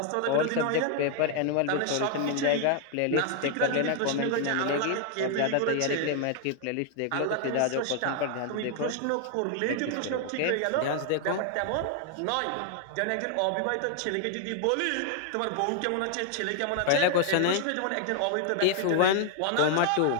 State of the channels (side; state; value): both; different; correlation 0.00